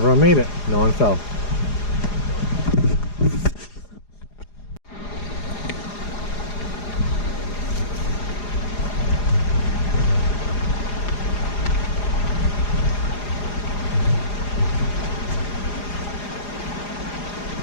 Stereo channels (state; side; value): late; right; 4.9 ms